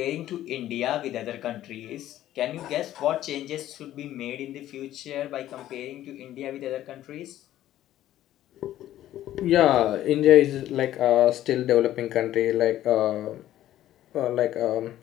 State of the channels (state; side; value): quieter; right; 13.2 dB